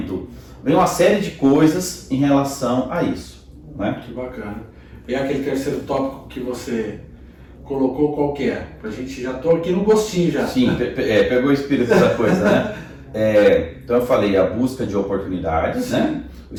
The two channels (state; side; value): identical; both; correlation 1.00